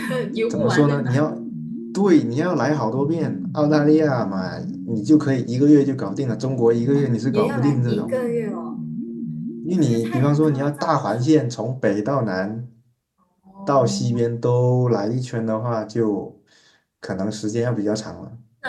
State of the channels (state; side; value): identical; both; correlation 1.00